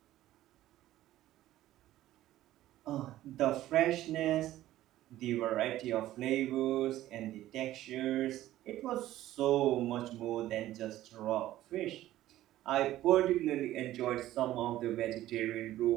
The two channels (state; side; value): quieter; left; 14.4 dB